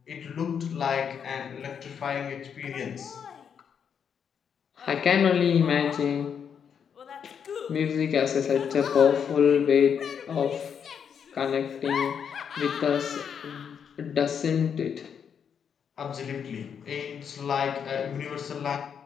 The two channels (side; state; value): right; quieter; 7.5 dB